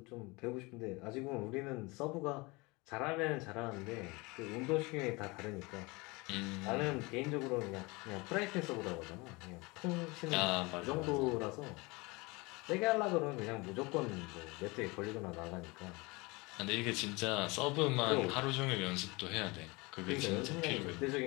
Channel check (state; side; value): quieter; right; 25.2 dB